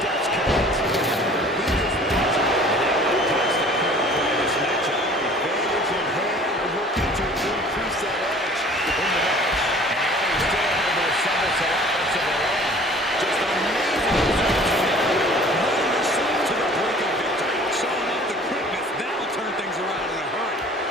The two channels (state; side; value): normal; both; correlation 0.49